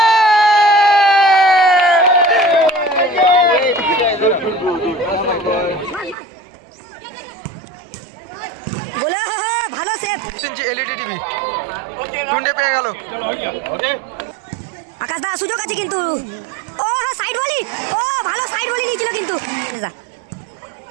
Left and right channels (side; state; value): left; drops out; at 6.2 s